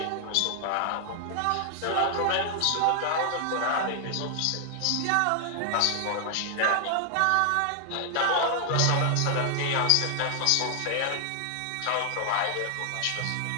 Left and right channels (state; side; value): different; both; correlation 0.00